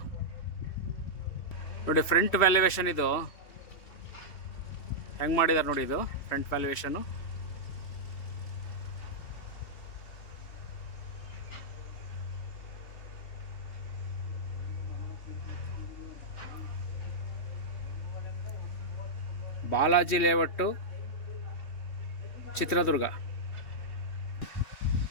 ನೋಡಿ. ಫ್ರಂಟ್ ವ್ಯಾಲ್ಯುವೇಷನ್ ಇದು ಹೆಂಗೆ ಮಾಡಿದ್ದಾರೆ ನೋಡಿ. ಇದು ಫ್ರಂಟ್ ವ್ಯಾಲ್ಯುವೇಷನು. ಬಾಲಾಜಿ ಲೇಔಟು, ಚಿತ್ರದುರ್ಗ.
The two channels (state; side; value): late; right; 3.1 ms